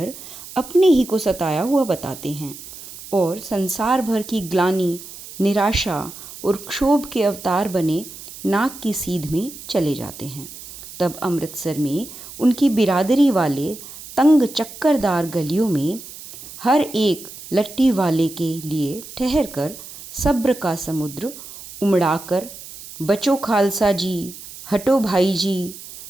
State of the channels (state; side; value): noise; right; hiss, 15 dB below the sound